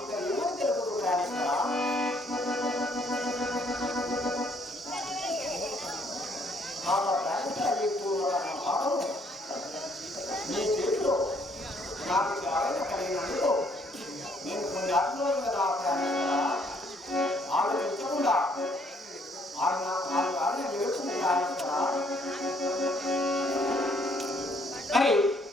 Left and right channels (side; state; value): both; normal; correlation 0.66